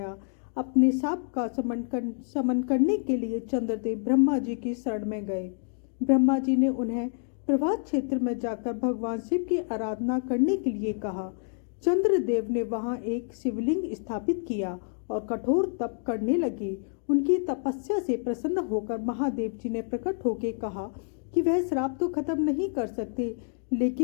अपने शाप का शमन करने के लिए चंद्रदेव ब्रह्मा जी की शरण में गए। ब्रह्मा जी ने उन्हें प्रभास क्षेत्र में जाकर भगवान शिव की आराधना करने के लिए कहा। चंद्रदेव ने वहां एक शिवलिंग स्थापित किया और कठोर तप करने लगे। उनकी तपस्या से प्रसन्न होकर महादेव जी ने प्रकट होकर कहा कि वह श्राप तो खत्म नहीं कर सकते,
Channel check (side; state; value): right; silent; 56 dB below the other